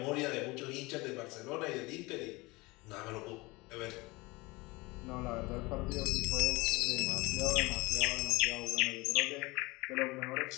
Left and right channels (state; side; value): quieter; right; 23.3 dB